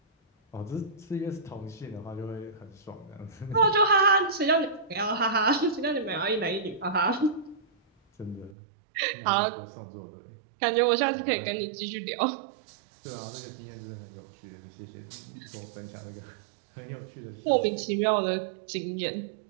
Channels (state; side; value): drops out; left; at 8.6 s